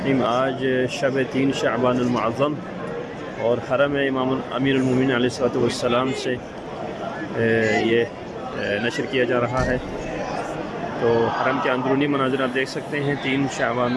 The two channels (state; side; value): identical; both; correlation 1.00